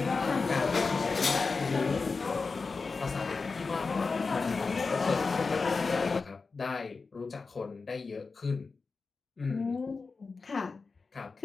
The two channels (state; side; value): quieter; right; 4.4 dB